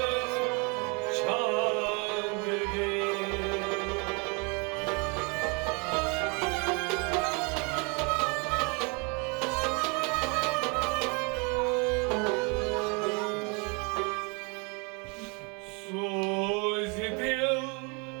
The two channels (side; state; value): left; quieter; 32.3 dB